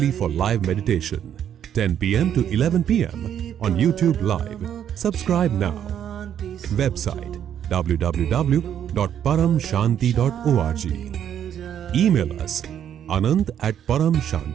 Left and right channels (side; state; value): left; quieter; 9.6 dB